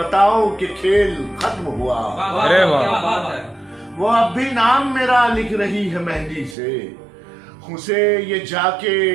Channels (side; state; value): left; drops out; at 6.6 s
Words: کہ کھیل ختم ہوا۔ ارے واہ، وہ اب بھی نام میرا لکھ رہی ہے مہندی سے، اسے یہ جا کے